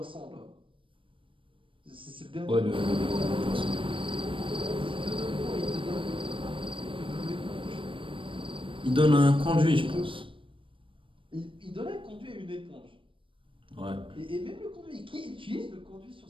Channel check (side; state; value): left; late; 0.25 ms